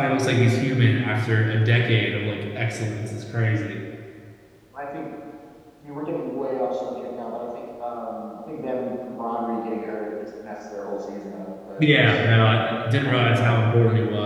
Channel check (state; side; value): identical; both; correlation 1.00